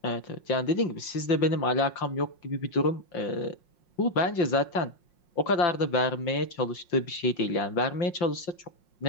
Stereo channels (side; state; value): right; late; 5.6 ms